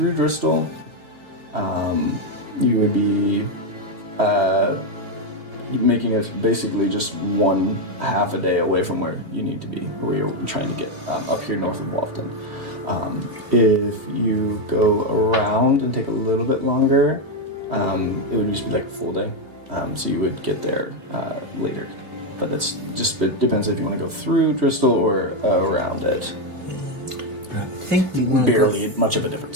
Bristol, you would be making it basically just one half a day away from where you need to be, or where you're trying to get up here north of Walton. If you go around and take a little bit longer, it would just be like a full day. So you would get there later. But that's just, it depends if you want to go through Bristol or around it. Barely much of a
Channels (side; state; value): left; late; 3.1 ms